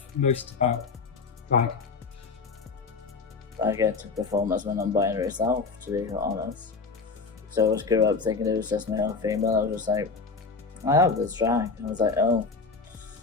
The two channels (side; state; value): right; quieter; 4.4 dB